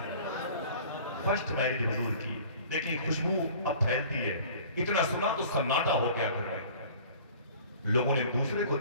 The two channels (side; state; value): both; inverted; correlation -0.47